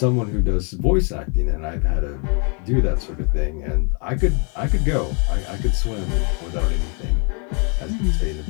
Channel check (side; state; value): right; quieter; 37.6 dB